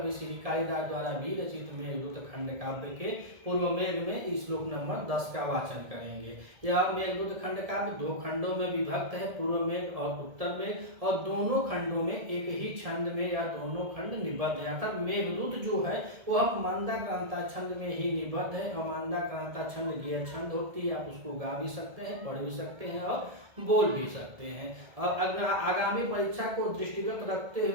श्री कालिदास द्वारा भी रचित मेघदूत खंड काव्य के पूर्व मेघ में श्लोक नंबर 10 का वाचन करेंगे। यह मेघदूत खंड काव्य दो खंडों में विभक्त है, पूर्व मेघ और उत्तर मेघ, और दोनों खंडों में एक ही छंद में या दोनों खंड निबद्ध है। अर्थात मेघदूत जो है वह मंदाक्रांता छंद में ही निबद्ध है, और मंदाक्रांता छंद गियर छंद होती है। आप उसको गा भी सकते हैं, पढ़ भी सकते हैं और बोल भी सकते हैं। और अगर आगामी परीक्षा को दृष्टिगत रखते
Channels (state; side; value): late; left; 1.7 ms